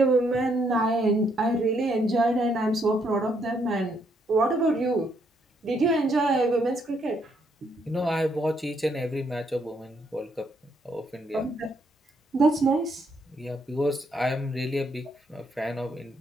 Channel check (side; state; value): both; normal; correlation 0.73